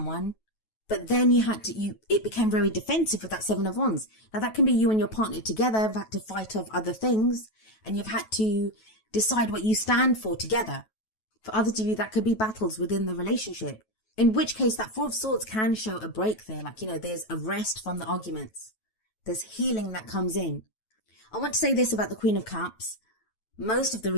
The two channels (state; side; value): late; right; 9.2 ms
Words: but then it became very defensive with that Seven of Wands. Now, that can be you and your partner together have had to fight off other things, and you've had to decide what you stand for together. For others of you, that could be battles within the relationship. In which case, that Four of Swords can show a break there. Like, there's a rest from the arguments. There's healing that comes in. I want to say this about the Queen of Cups. Most of the